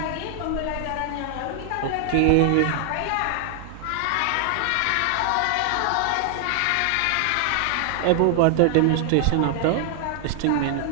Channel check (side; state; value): both; different; correlation 0.00